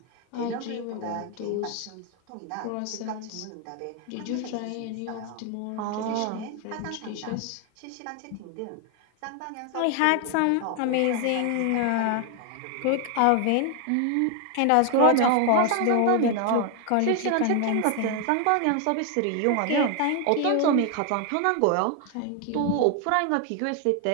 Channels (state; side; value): different; both; correlation 0.00